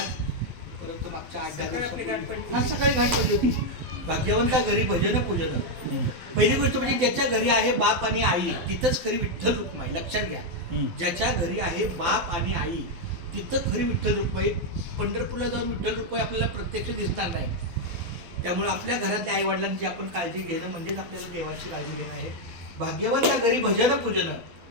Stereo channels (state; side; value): late; left; 12 ms